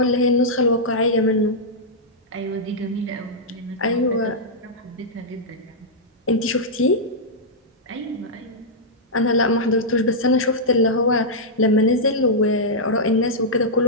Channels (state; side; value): normal; both; correlation -0.09